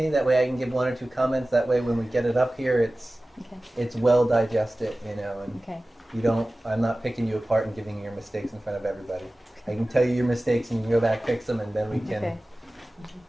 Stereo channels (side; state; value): both; normal; correlation 0.97